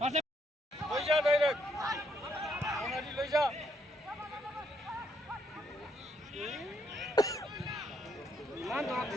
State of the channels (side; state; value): both; normal; correlation 0.73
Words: লই যা ডাইরেক্ট ওনাদি লই যা মান তো